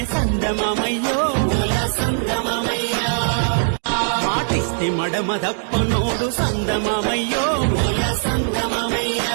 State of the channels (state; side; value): silent; left; digital silence